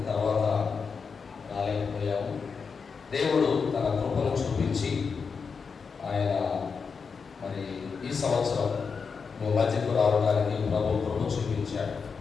తర్వాత రాలేకపోయాము. దేవుడు తన కృపను చూపించి ఆయన మరి ఈ సంవత్సరం మీ మధ్యకు రావడానికి ప్రభు కృప చూపించాడు.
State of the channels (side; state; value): right; quieter; 5.5 dB